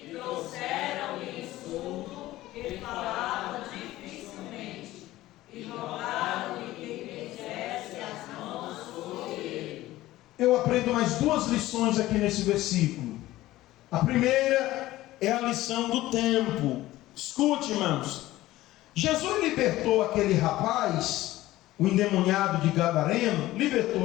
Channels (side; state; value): right; quieter; 16.3 dB